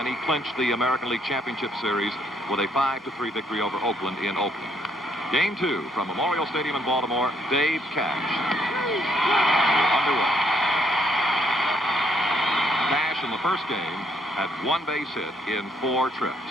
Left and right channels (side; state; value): both; normal; correlation 0.71